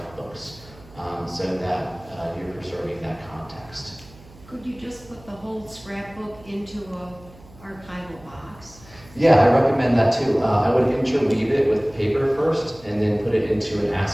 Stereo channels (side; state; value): right; noise; hum, 22 dB below the sound